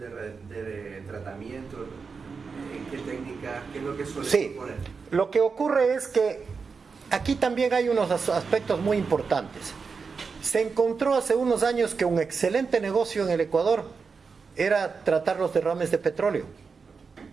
de tratamiento, ¿en qué técnicas, qué es lo que suelen poner? Lo que ocurre es que aquí también hay unos aspectos muy importantes. Se encontró hace unos años que un excelente negocio en el Ecuador era tratar los derrames de petróleo.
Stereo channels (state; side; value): quieter; left; 5.1 dB